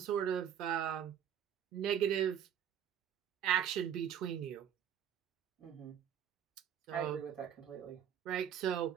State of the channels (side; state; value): left; quieter; 9.2 dB